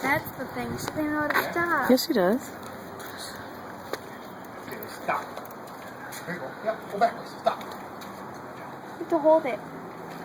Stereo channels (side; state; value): both; identical; correlation 1.00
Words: That's the thing. She didn't know how to stop. Yes, she does. Okay, stop. There you go. Yep. Go backwards. Stop. You have to hold it.